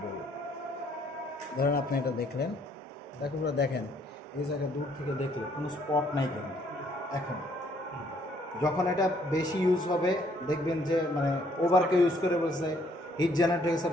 বলবো। ধরেন আপনি এটা দেখলেন, দেখো পুরো দেখেন এই জায়গায় দূর থেকে দেখলে কোনো স্পট নাই কেন। এখন যখন এটা বেশি ইউজ হবে, দেখবেন যে মানে ওভারকে ইউজ করে বলছে, হিট জেনারেট হয়ে গেছে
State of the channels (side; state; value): both; normal; correlation 0.66